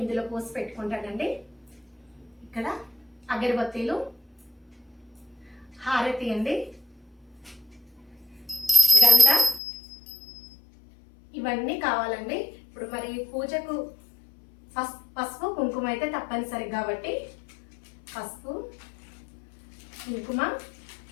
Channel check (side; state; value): right; drops out; at 9.6 s